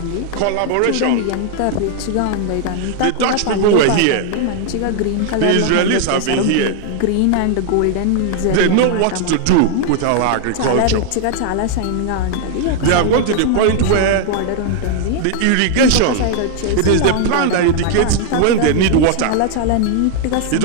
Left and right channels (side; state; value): both; different; correlation 0.00